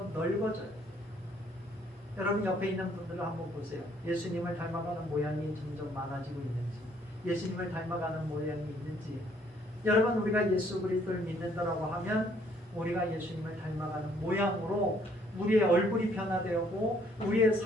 넓어져요. 여러분, 옆에 있는 분들을 한번 보세요. 예수님을 닮아가는 모양이 점점 많아지고 있는지, 예수님을 닮아가는 모양이 있는지. 여러분, 우리가 예수 그리스도를 믿는다라고 하면 우리가 예수님을 닮아가는 모양으로 우리의 얼굴이 변화되고 우리의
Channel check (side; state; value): both; normal; correlation 0.65